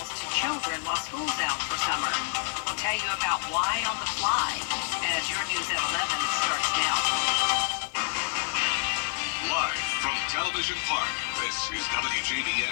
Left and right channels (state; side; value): silent; right; 55 dB below the other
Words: to children while school's out for summer. We'll tell you about why on the fly as your News at 11 starts now. Live from Television Park, this is